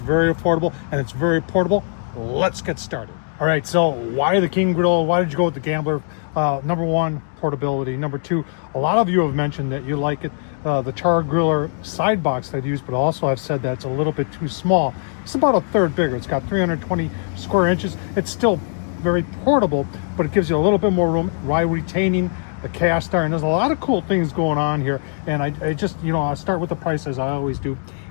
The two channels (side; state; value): right; silent; digital silence